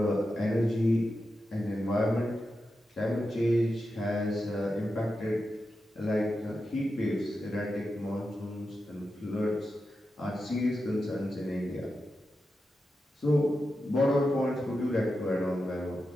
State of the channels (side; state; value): both; normal; correlation 0.90